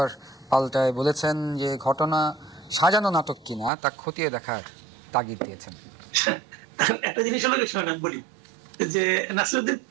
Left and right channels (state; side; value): drops out; left; at 3.7 s